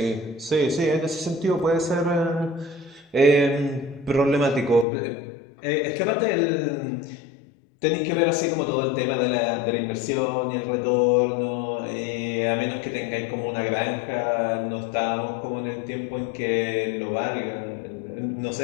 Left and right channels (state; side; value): drops out; right; at 4.9 s